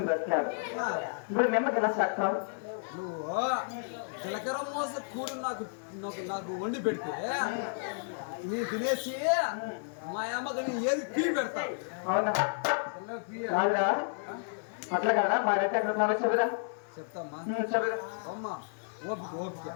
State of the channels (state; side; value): silent; right; digital silence